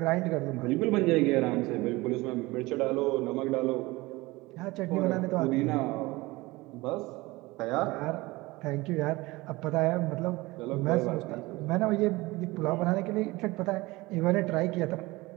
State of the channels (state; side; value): quieter; left; 21.3 dB